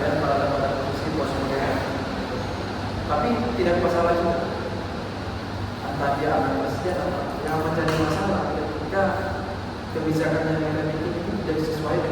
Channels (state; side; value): identical; both; correlation 1.00